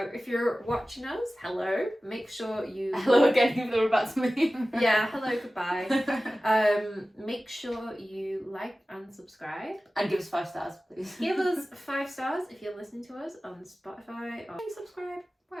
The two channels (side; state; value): both; normal; correlation 0.96